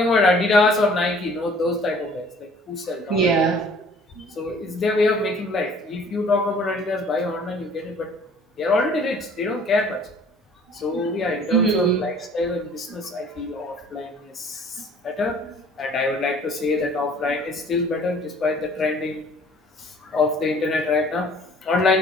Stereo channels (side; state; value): both; normal; correlation 0.54